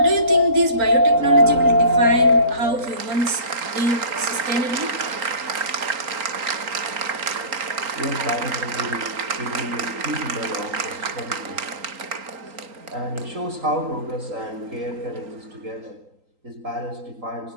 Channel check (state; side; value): late; left; 3.8 ms